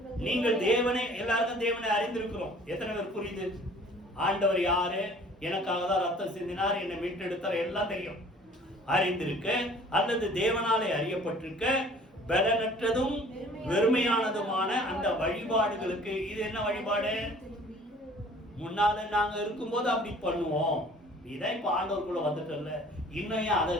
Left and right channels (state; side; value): normal; both; correlation 0.51